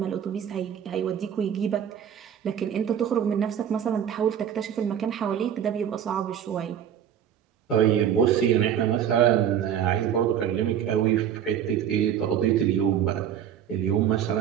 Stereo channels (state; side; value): quieter; left; 9.3 dB